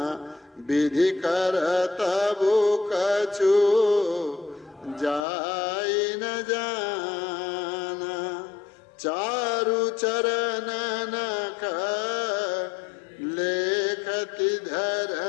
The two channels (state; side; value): drops out; right; at 5.2 s